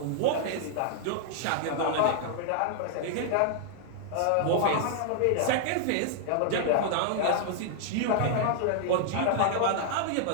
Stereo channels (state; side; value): different; both; correlation 0.00